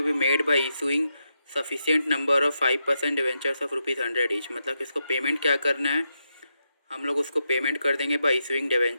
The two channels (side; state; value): both; inverted; correlation -0.84